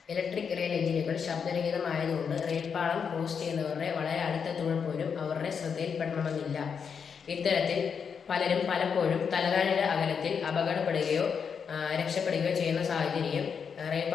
ഇലക്ട്രിക് റെയിൽ എഞ്ചിനുകൾ ശബ്ദരഹിതമായതുകൊണ്ട് റെയിൽപാളം ക്രോസ് ചെയ്യുന്നവരുടെ വളരെ അടുത്തെത്തുമ്പോൾ പോലും അവരുടെ ശ്രദ്ധയിൽപ്പെടണമെന്നില്ല. ഇത്തരത്തിൽ പലരും പലപ്പോഴും തലനാരിഴ അകലത്തിൽ അപകടപ്പെടുകയോ രക്ഷപ്പെടുകയോ ചെയ്യുന്ന സാഹചര്യം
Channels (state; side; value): quieter; right; 6.5 dB